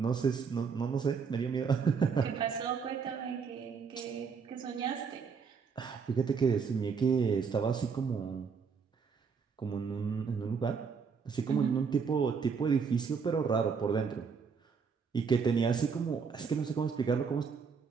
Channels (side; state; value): left; quieter; 5.8 dB